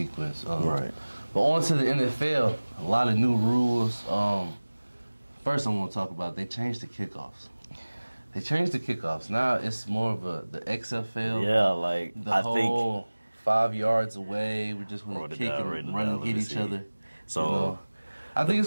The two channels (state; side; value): inverted; both; correlation -1.00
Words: Right. But on to the NFL, a lot of new rules. First I want to talk about, they changed the kickoffs. Now it's more of the XFL. Yeah, like the whole 5 yards away. We're just going to kick and run and hit each other. So I think